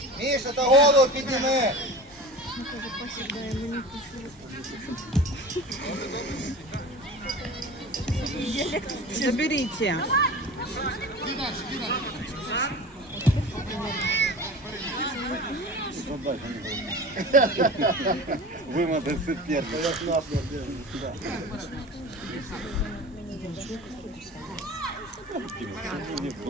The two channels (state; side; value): normal; both; correlation 0.35